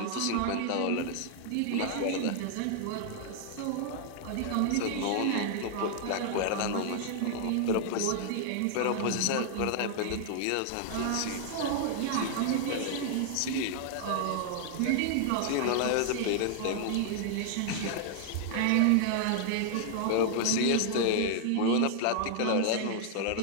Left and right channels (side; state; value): both; different; correlation 0.00